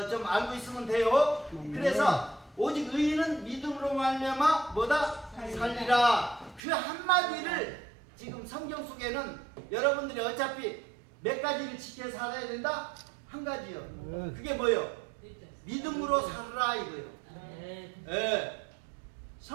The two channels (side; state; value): left; drops out; at 6.6 s